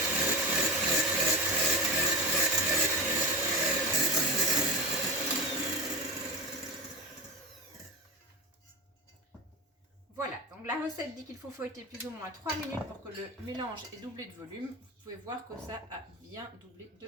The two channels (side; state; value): both; normal; correlation 0.24